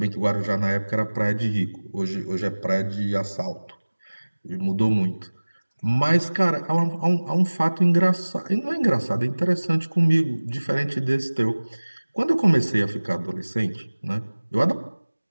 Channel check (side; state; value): both; inverted; correlation -1.00